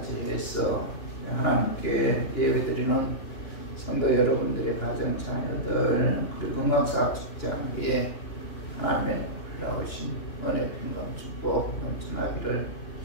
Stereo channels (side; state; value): right; late; 2.9 ms